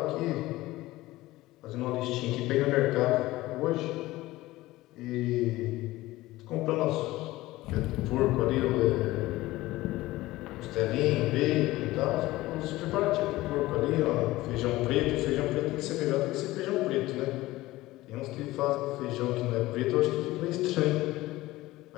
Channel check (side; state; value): right; quieter; 18.0 dB